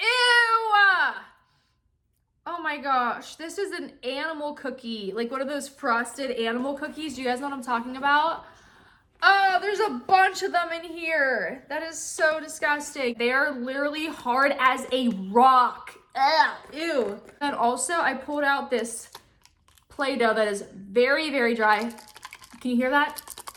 Oh my gosh, this is an animal cookie. Like one of those frosted animal cookies. Do you guys know what I'm talking about? Oh, there's a bunch of them in here. That is so disgusting. They are literally hard as a rock. Ugh, ew. And also, I pulled out this Play-Doh that is very, very dry. Can you hear that?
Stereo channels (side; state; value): both; identical; correlation 1.00